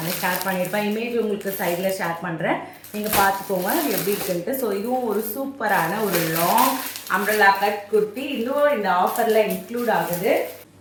ஷேர் பண்ணியிருப்பேன். இமேஜ் உங்களுக்கு சைடில் ஷேர் பண்ணுறேன், நீங்கள் பார்த்துக்கோங்க எப்படி இருக்குன்ட்டு. ஸோ இதுவும் ஒரு சூப்பரான ஒரு லாங் அம்ப்ரெல்லா கட் குர்த்தி. இன்னும் இந்த ஆஃபரில் இன்க்ளூட் ஆகுது.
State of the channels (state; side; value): identical; both; correlation 1.00